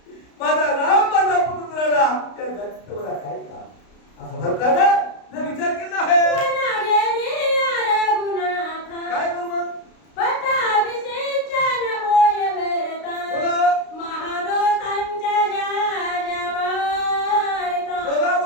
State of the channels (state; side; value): late; right; 32 ms